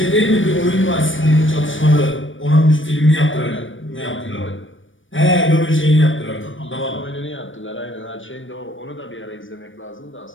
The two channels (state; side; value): late; right; 0.57 ms